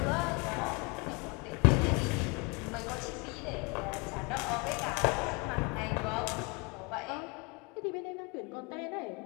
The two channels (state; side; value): quieter; right; 29.9 dB